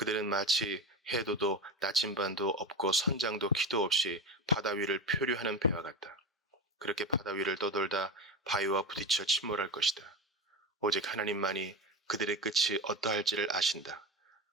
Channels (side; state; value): both; normal; correlation 0.22